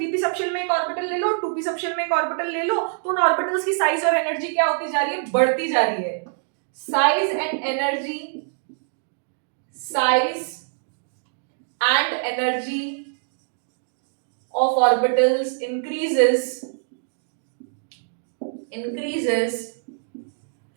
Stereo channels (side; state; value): left; silent; digital silence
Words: सबशेल में एक ऑर्बिटल ले लो, 2p सबशेल में एक ऑर्बिटल ले लो, तो उन ऑर्बिटल्स की साइज और एनर्जी क्या होती जा रही है, बढ़ती जा रही है. Size and energy, size and energy of orbitals increases